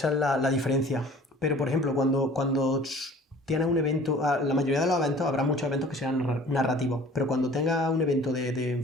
es la diferencia. Pero, por ejemplo, cuando tienes un evento, la mayoría de los eventos, habrá muchos eventos que serán narrativos, pero cuando tengas un evento de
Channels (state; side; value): normal; both; correlation 0.48